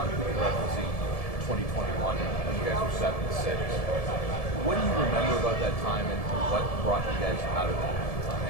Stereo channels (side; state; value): right; late; 1.7 ms